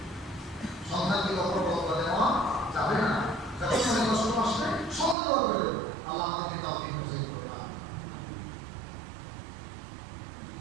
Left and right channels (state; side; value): drops out; left; at 5.2 s